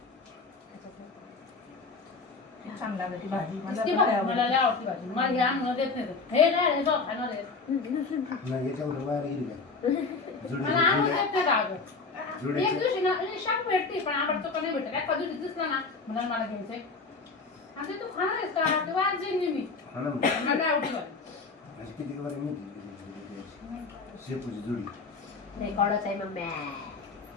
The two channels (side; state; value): right; quieter; 4.2 dB